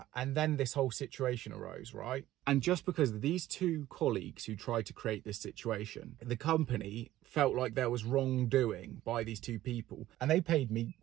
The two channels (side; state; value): left; quieter; 14.5 dB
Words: and then this whole situation arose, right? And just because of these two colleagues who tried to create this situation, the company felt like there was wrongdoing by these two people, and they paid me